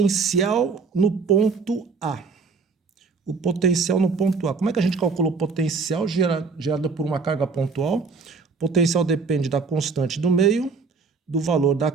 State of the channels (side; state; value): left; quieter; 4.8 dB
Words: no ponto A. O potencial no ponto A. Como é que a gente calcula o potencial gerado por uma carga pontual? O potencial depende da constante do meio, do valor da